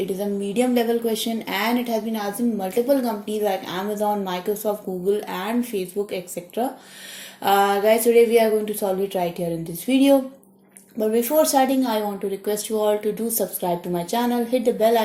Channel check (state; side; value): identical; both; correlation 1.00